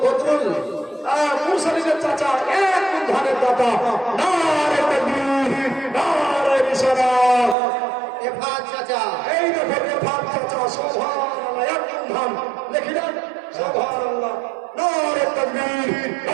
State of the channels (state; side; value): drops out; left; at 7.6 s